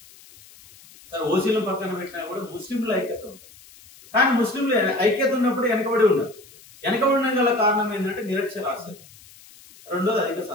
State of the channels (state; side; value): noise; left; hiss, 23 dB below the sound